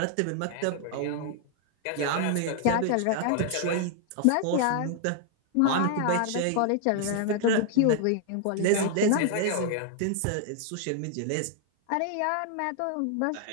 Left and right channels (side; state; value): both; different; correlation 0.00